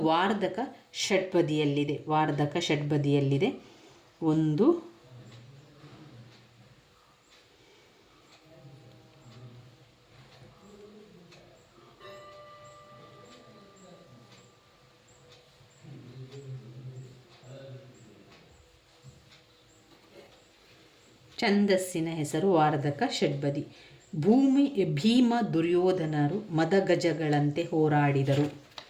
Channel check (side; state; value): both; identical; correlation 1.00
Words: ವಾರ್ಧಕ ಷಡ್ಪದಿಯಲ್ಲಿದೆ. 1 ಛಂದಸ್ಸಿನ ಹೆಸರು ವಾರ್ಧಕ ಷಡ್ಪದಿ. ಭೀಮ ದುರ್ಯೋಧನರು ಮದಗಜಗಳಂತೆ ಹೋರಾಡಿದರು.